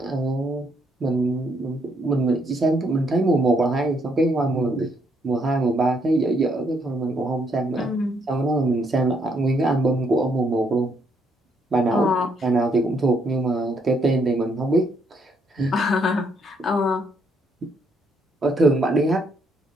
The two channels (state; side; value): normal; both; correlation 0.72